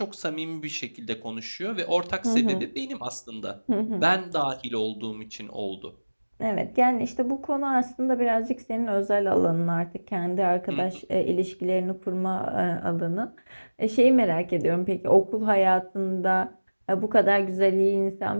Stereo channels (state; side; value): inverted; both; correlation -1.00